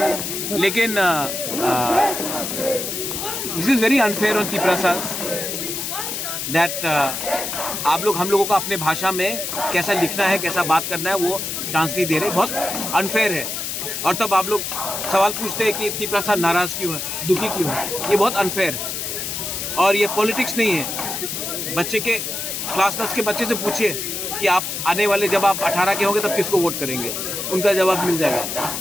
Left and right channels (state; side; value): noise; left; hiss, 4 dB below the sound